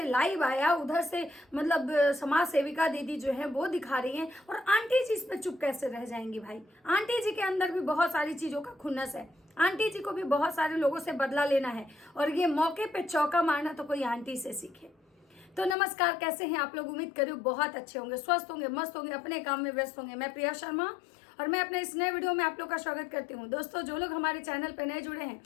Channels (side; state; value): right; drops out; at 15.8 s